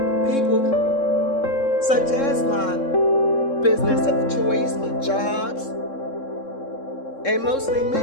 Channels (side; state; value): right; late; 3.7 ms